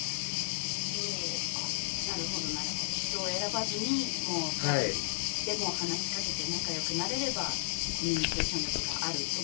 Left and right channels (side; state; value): right; silent; 56 dB below the other